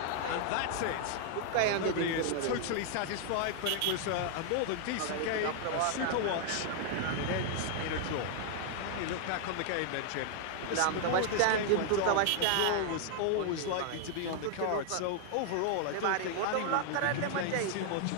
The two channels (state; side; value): different; both; correlation 0.00